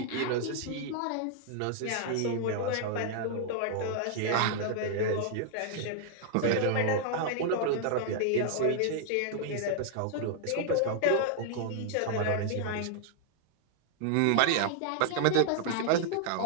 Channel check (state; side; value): different; both; correlation 0.00